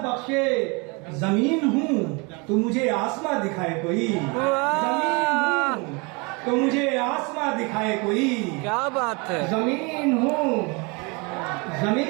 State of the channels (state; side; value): quieter; left; 29.5 dB